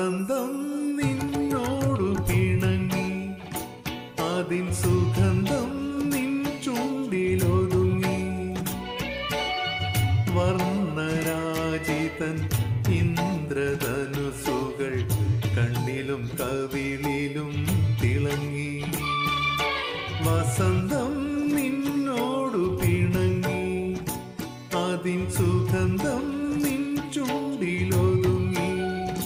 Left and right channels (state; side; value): identical; both; correlation 1.00